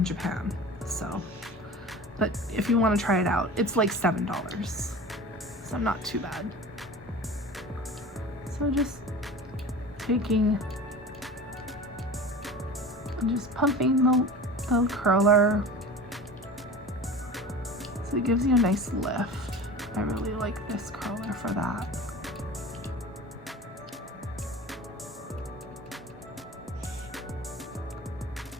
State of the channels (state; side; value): normal; both; correlation 0.36